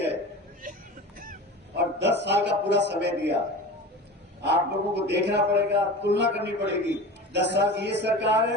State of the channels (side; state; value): both; normal; correlation 0.33